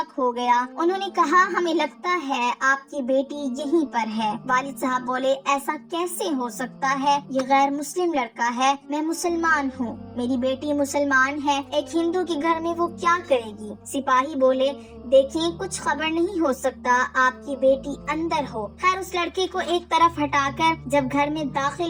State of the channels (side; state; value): both; identical; correlation 1.00